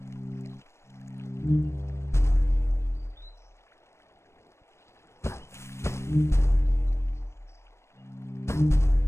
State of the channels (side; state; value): right; late; 0.13 ms